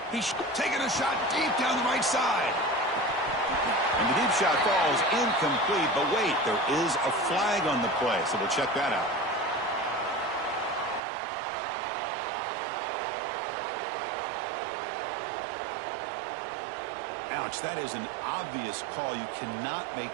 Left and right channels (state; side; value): drops out; left; at 11.0 s